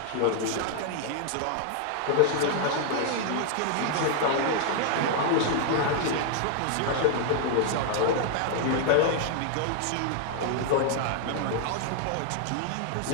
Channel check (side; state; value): both; different; correlation 0.00